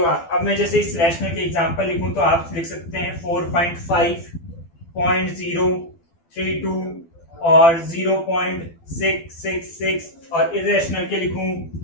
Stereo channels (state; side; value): late; right; 12 ms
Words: अब मैं जैसे इस रैशनल के एग्जांपल लिखूं तो आप लिख सकते हैं 4.5.032 और 0.666, और इररेशनल के लिखूं